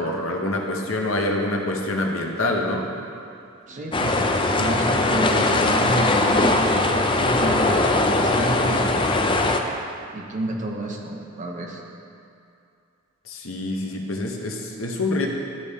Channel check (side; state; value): both; normal; correlation 0.30